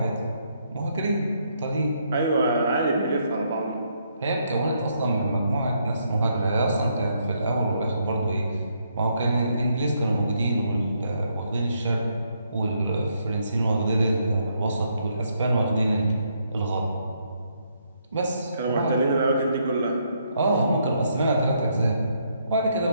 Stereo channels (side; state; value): both; inverted; correlation -0.74